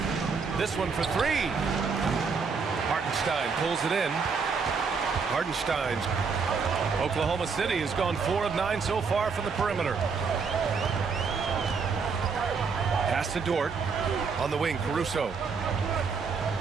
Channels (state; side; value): quieter; left; 5.3 dB